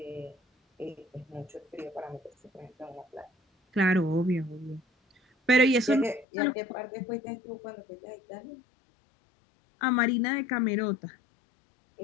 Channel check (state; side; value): drops out; right; at 6.2 s